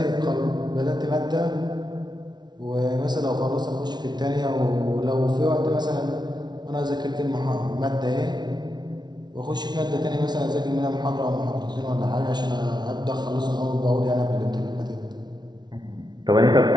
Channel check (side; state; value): left; late; 0.20 ms